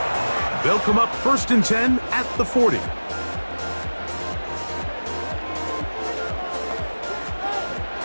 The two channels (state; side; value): inverted; both; correlation -1.00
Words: They'll come up 1st and 10 at the 40.